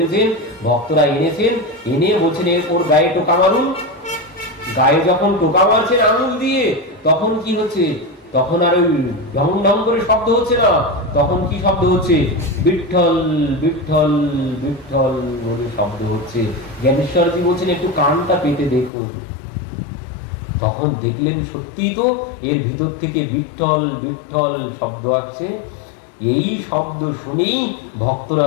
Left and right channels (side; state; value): right; drops out; at 18.9 s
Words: ভক্তরা এনেছেন, এনে বলছেন ওর গায়ে টোকা মারুন। গায়ে যখন টোকা মারছেন আঙুল দিয়ে, তখন কি হচ্ছে? তখন আর ওই ঢং ঢং করে শব্দ হচ্ছে না, তখন কি শব্দ হচ্ছে? বিঠ্ঠল বিঠ্ঠল বিঠ্ঠল বলে শব্দ হচ্ছে। জ্ঞানেশ্বরজি বলছেন একটু কানটা পেতে দেখুন। তখন দেখলেন সত্যি তো এর ভিতর থেকে বিঠ্ঠল বিঠ্ঠল শব্দ আসছে। এই শব্দ শুনেই ভক্তরা